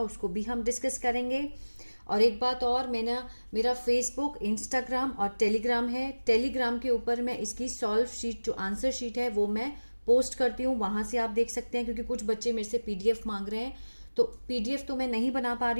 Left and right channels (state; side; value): inverted; both; correlation -1.00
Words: उसको भी हम डिस्कस करेंगे। और एक बात और, मेरा फेसबुक, इंस्टाग्राम और टेलीग्राम है। टेलीग्राम के ऊपर मैं इसकी सॉल्व शीट, जो आंसर शीट है, वो मैं पोस्ट करती हूँ। वहाँ से आप देख सकते हैं, क्योंकि कुछ बच्चे मेरे से पीडीएफ मांग रहे हैं, तो पीडीएफ तो मैं नहीं बना पा